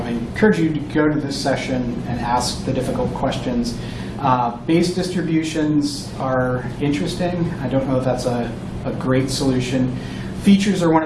I encourage you to go to this session and ask the difficult questions. Base distributions are interesting. I don't know if that's a great solution. Features are one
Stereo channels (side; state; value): both; identical; correlation 1.00